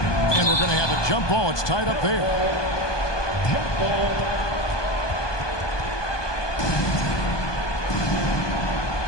And we're going to have a jump ball. It's tied up there. Jump ball.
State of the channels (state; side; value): late; right; 1.2 ms